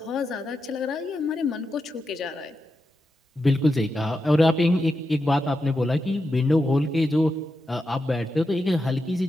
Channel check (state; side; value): normal; both; correlation 0.87